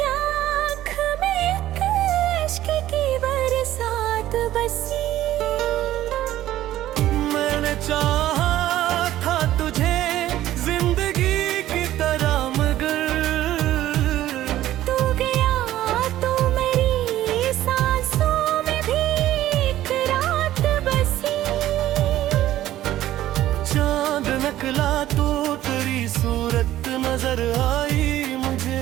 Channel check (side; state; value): left; quieter; 13.8 dB